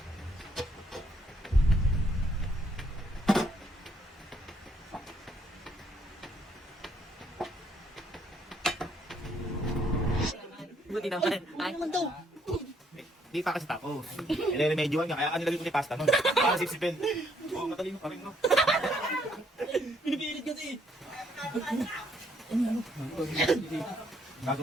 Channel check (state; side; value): normal; both; correlation 0.70